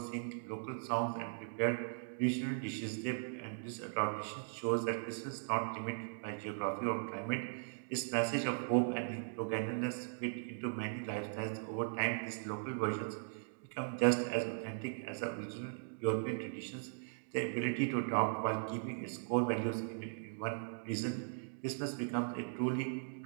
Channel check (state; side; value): silent; left; digital silence